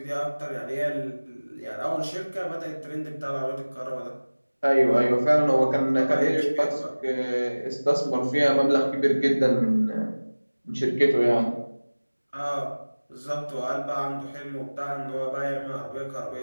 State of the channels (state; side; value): inverted; both; correlation -1.00